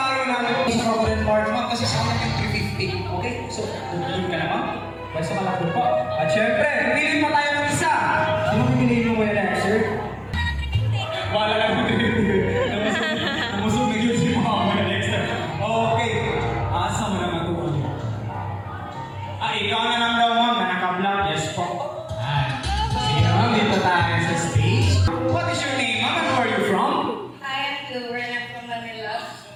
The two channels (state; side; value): identical; both; correlation 1.00